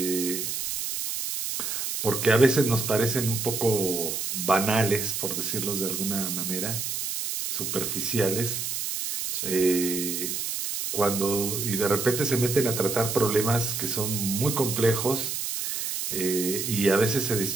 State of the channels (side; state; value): right; noise; hiss, 3 dB below the sound